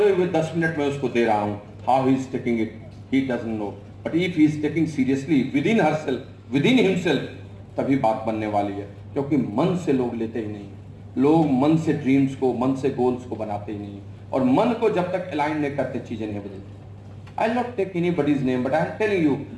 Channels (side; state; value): both; identical; correlation 1.00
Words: हुए 10 मिनट में उसको दे रहा हूं। How he is taking it, he doesn't know, but if he is taking seriously with in himself, तभी बात बनने वाली है। क्योंकि मन से लोग लेते ही नहीं, लोग मन से ड्रीम्स को, मन से गोल्स को बनाते ही नहीं, और मन को जब तक अलाइन नहीं करते चीजें नहीं बदलती। I will not take anybody's name, but I am telling you,